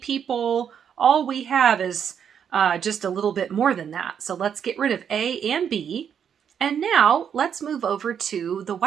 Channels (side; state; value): left; quieter; 8.1 dB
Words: All we have is just a little bit more than that. So let's get rid of A and B. And now let's move over to the